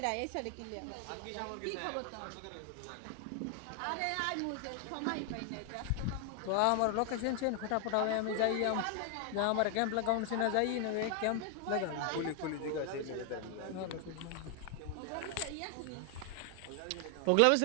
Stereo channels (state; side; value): different; both; correlation 0.00